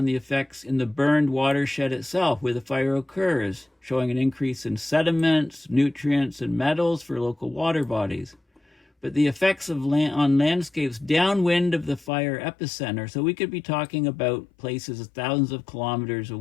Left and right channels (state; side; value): drops out; right; at 12.1 s